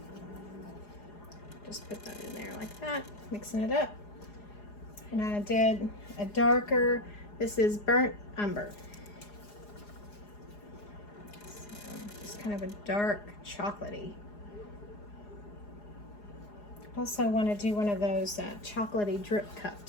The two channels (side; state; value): right; late; 4.8 ms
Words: just put that in there like that, mixing it up. And I did a darker, this is burnt umber. So just kind of a dark chocolatey. Also want to do one of those chocolatey drip